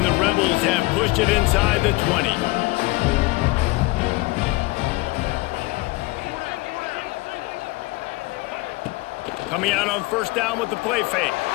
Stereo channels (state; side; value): quieter; right; 22.5 dB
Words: the Rebels have pushed it inside the 20. Coming out on first down with the play fake.